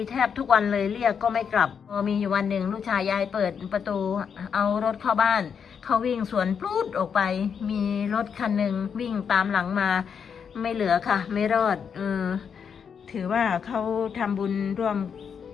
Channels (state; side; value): quieter; right; 7.0 dB